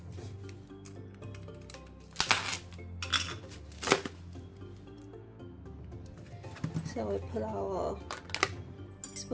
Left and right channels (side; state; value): both; identical; correlation 1.00